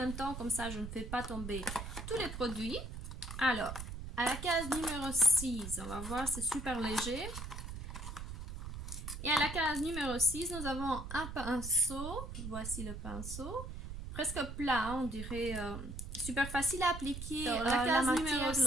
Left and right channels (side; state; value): right; noise; rumble, 8 dB below the sound